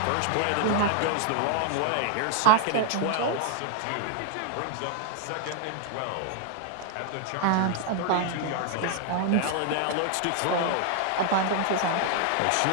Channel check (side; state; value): both; different; correlation 0.00